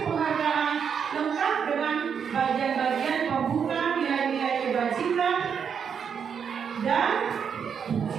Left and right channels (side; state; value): left; quieter; 7.1 dB